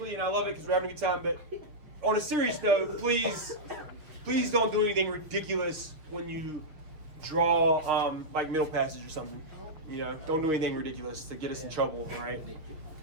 and I love it because we're having a good time. But on a serious note, please don't do anything ridiculous when you draw like middle passage or something. You know, don't do anything ridiculous to get us in trouble. All right.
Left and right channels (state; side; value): late; left; 6.4 ms